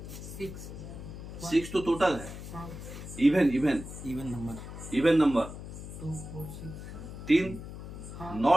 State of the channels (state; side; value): noise; left; hum, 10 dB below the sound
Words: 6 तो टोटल है। Even number 2 4 6 3।